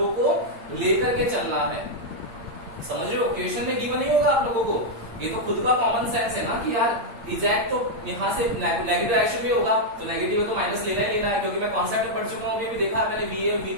को लेकर के चलना है, समझ रहे हो? क्वेश्चन में गिवन नहीं होगा आप लोगों को, ये तो खुद का कॉमन सेंस है ना कि यार इजैक्ट तो यहाँ से नेगेटिव डायरेक्शन में होगा, तो नेगेटिव है तो माइनस लेना ही लेना है, क्योंकि मैं कॉन्सेप्ट में पढ़ चुका हूँ, अभी देखा है मैंने वीए और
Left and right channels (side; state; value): left; late; 8.7 ms